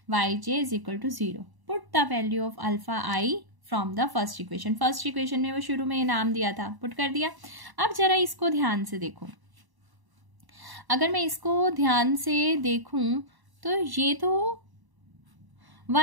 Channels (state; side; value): late; left; 1.0 ms